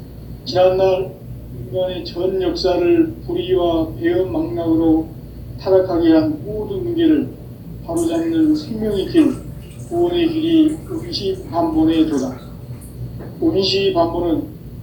지난날 인간의 전 역사를 불의와 배움 망락으로 타락하게 한 모든 문제를 바로잡는 생명의 길, 구원의 길이 운시반본의 도다. 운시반본은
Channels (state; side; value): identical; both; correlation 1.00